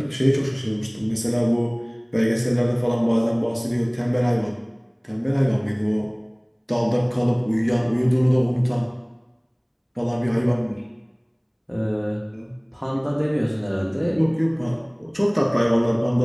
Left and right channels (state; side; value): identical; both; correlation 1.00